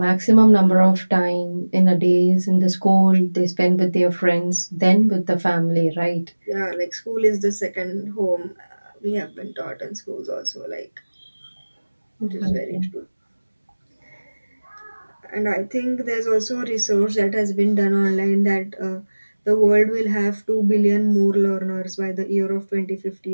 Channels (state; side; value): inverted; both; correlation -1.00